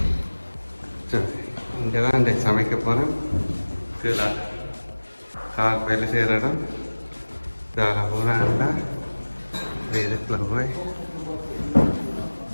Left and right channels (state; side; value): inverted; both; correlation -1.00